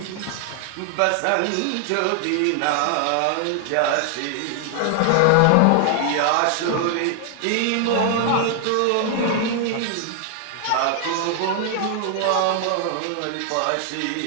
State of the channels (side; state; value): both; different; correlation 0.00